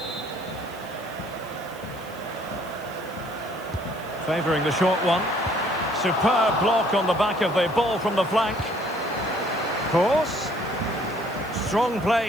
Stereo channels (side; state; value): right; noise; hiss, 22 dB below the sound